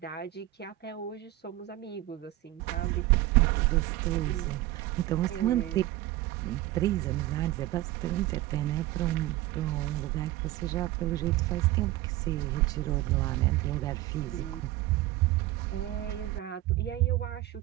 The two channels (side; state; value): left; quieter; 16.2 dB